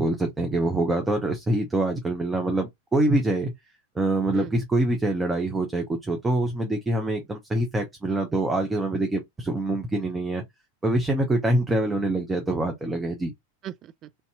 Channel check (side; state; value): both; normal; correlation 0.73